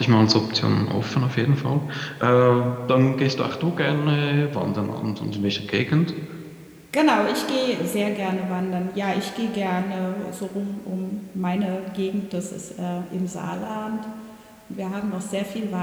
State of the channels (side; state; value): both; identical; correlation 1.00